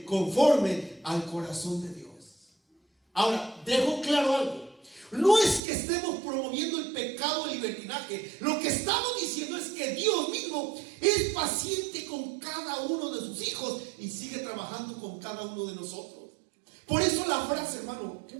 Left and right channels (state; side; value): drops out; left; at 5.6 s